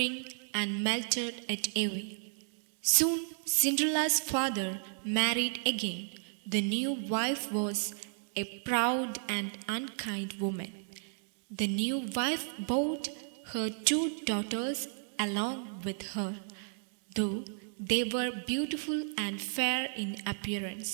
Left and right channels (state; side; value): silent; left; digital silence